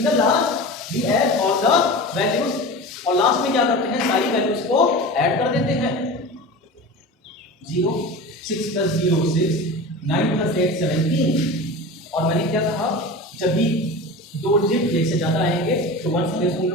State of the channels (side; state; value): both; normal; correlation 0.31